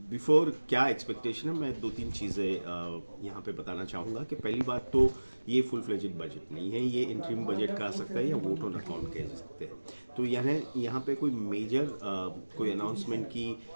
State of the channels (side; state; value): both; inverted; correlation -1.00